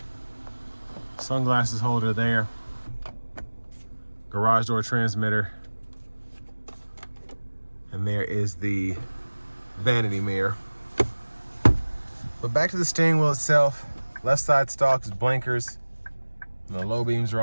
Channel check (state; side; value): inverted; both; correlation -1.00